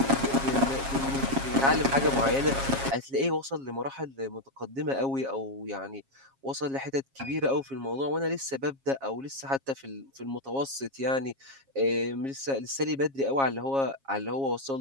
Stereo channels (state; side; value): late; left; 7.4 ms